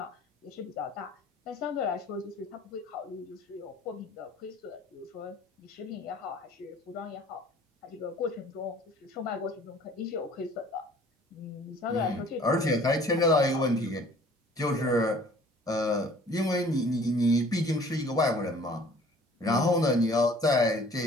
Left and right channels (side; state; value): both; normal; correlation 0.52